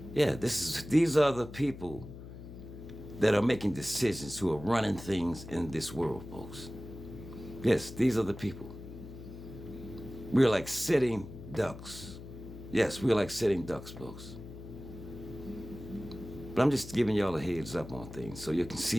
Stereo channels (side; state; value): left; noise; hum, 13 dB below the sound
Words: Yeah, these are the people that are making decisions, who are running things in this world, folks. Yes, these are the people. We're like sitting ducks. Yes, we're like sitting ducks, folks. But I'm just giving y'all a heads up on things so you can